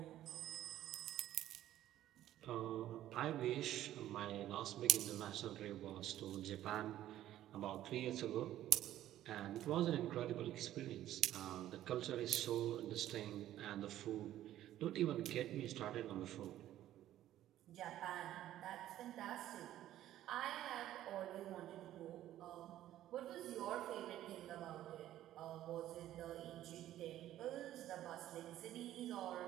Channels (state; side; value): quieter; left; 13.1 dB